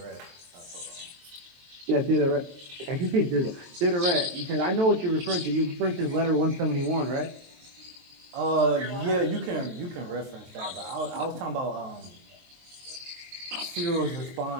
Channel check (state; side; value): late; left; 22 ms